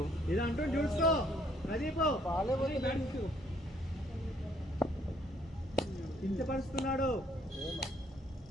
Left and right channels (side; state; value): both; normal; correlation 0.66